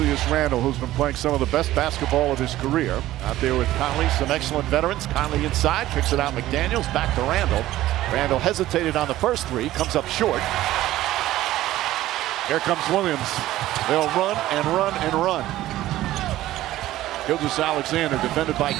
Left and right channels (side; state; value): left; quieter; 15.0 dB